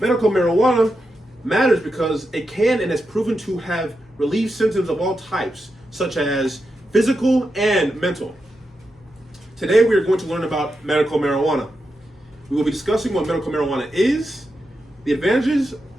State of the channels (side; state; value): both; normal; correlation 0.87